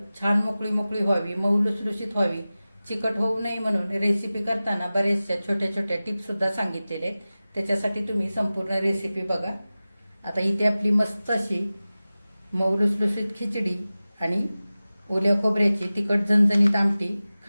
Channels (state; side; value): inverted; both; correlation -0.96